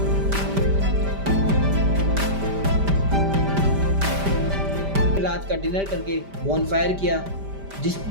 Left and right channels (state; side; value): late; left; 5.1 ms